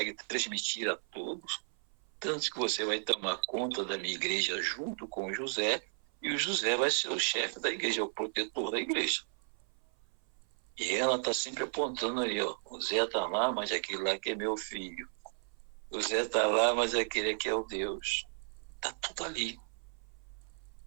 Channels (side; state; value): left; silent; 55 dB below the other